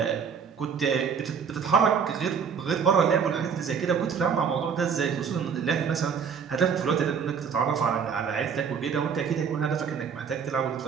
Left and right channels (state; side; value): quieter; left; 6.6 dB